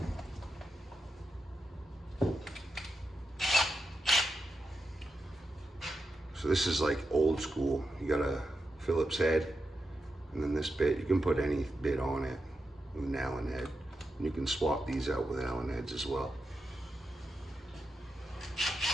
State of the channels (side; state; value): both; normal; correlation 0.88